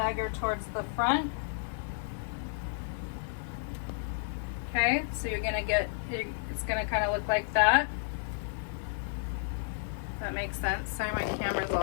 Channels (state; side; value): silent; right; digital silence